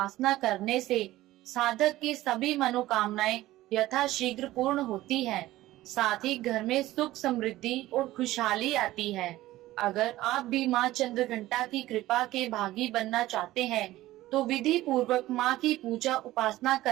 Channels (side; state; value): left; quieter; 16.2 dB